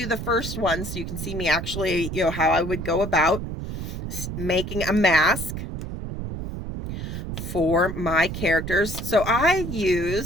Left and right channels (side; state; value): right; noise; rumble, 6 dB below the sound